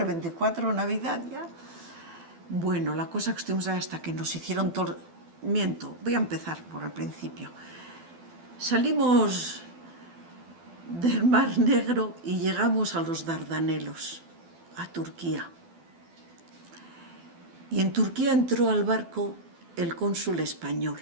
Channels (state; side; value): late; left; 12 ms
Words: 24 Navidad ya. Bueno, la cosa que estuvimos ahí hasta que nos hicieron todo... Miento, voy a empezar por el principio. Salimos del Mar Negro y llegamos a los Dardanelos, a Turquía. Y en Turquía entró al barco el cónsul español.